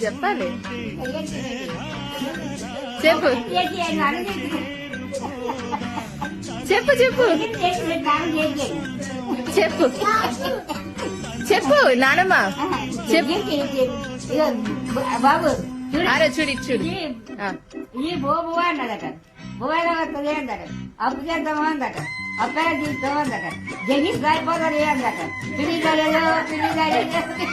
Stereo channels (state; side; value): identical; both; correlation 1.00